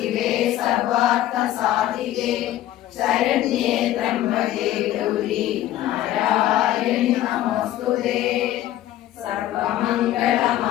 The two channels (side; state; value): right; quieter; 13.5 dB